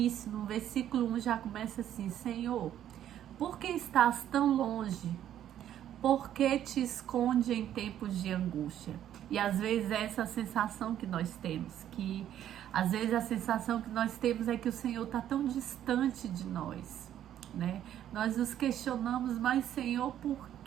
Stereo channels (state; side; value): quieter; left; 11.0 dB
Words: no versículo 1, já começa assim: Senhor, por que estás tão longe? Por que te esconde em tempos de angústia? E às vezes é essa sensação que nós temos, que às vezes a sensação que nós temos é que o Senhor está tão distante de nós, né? Nós nos questionamos: mas Senhor, por